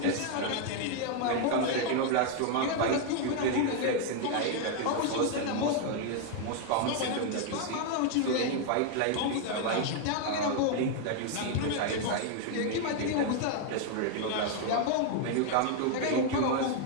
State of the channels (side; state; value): both; different; correlation 0.00